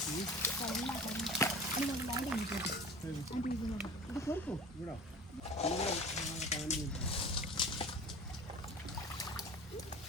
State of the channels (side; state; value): both; normal; correlation 0.39